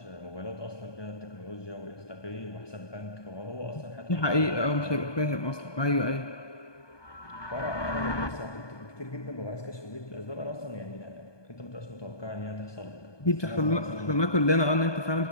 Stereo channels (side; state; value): right; late; 1.2 ms